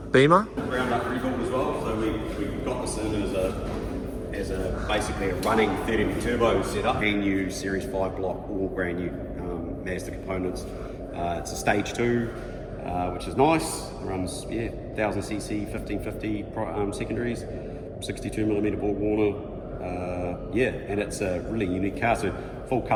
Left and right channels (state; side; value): identical; both; correlation 1.00